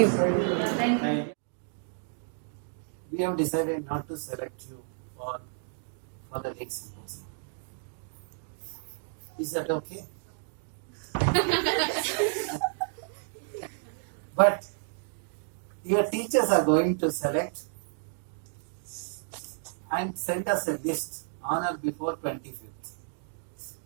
Thank you. We have decided not to select you for the lake symposium. Is that okay? But your teachers are going to select and send us a list on or before 25th.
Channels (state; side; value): silent; left; digital silence